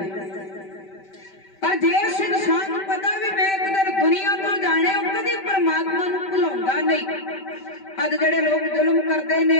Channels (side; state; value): right; late; 5.2 ms